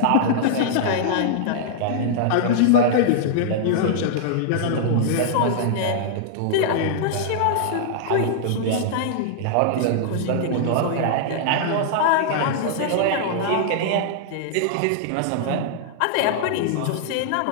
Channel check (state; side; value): different; both; correlation -0.01